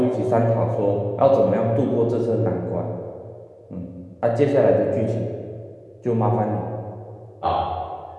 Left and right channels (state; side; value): identical; both; correlation 1.00